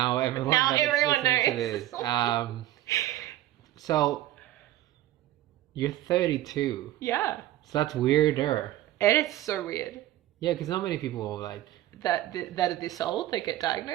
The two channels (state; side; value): quieter; left; 14.2 dB